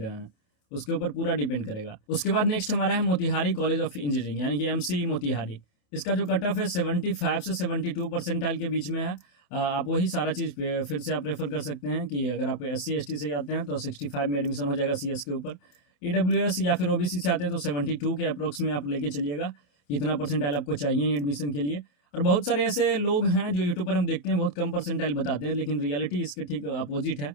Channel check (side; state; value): right; late; 28 ms